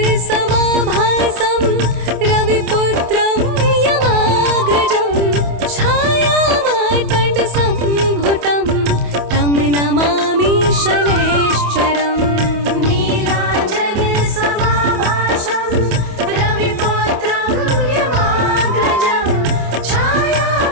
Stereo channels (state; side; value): late; left; 28 ms